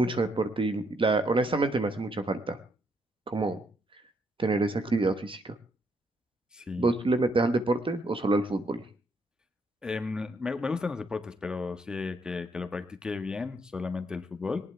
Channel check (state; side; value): normal; both; correlation 0.73